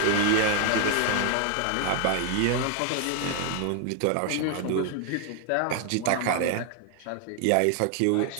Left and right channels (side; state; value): both; different; correlation 0.00